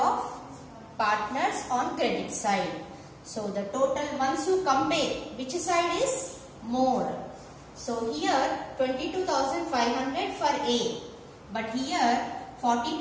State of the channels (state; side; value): identical; both; correlation 1.00